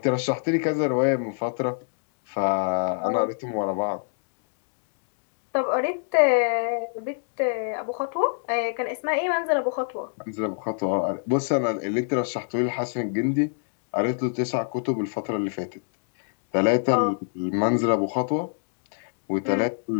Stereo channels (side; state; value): right; silent; digital silence